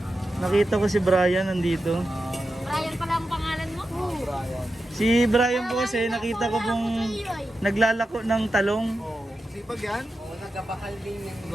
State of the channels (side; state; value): both; normal; correlation 0.91